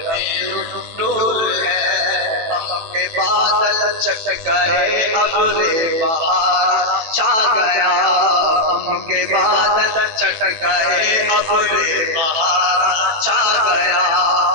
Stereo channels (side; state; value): left; late; 18 ms